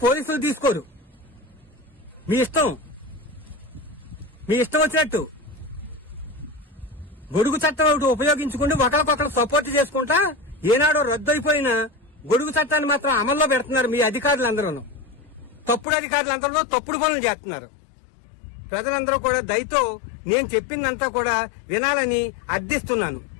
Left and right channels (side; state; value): right; drops out; at 15.9 s